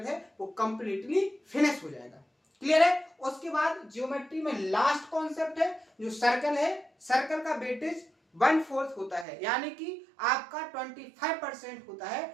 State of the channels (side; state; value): left; drops out; at 9.2 s